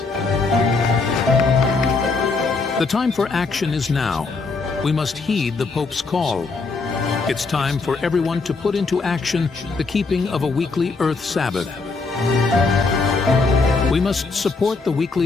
The time for action is now. We must heed the Pope's call. It's time for everyone to put into action the keeping of a weekly Earth Sabbath. We must support the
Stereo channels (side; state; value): right; quieter; 4.1 dB